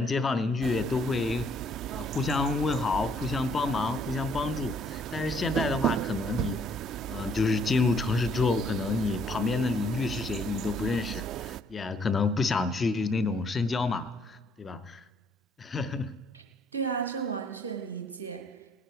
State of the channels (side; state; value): both; normal; correlation 0.65